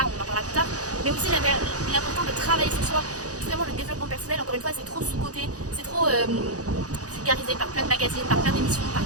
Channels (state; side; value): late; left; 0.67 ms